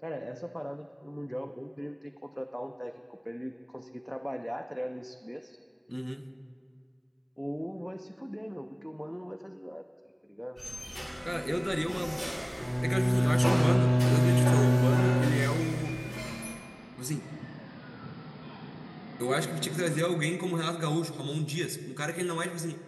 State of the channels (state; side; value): identical; both; correlation 1.00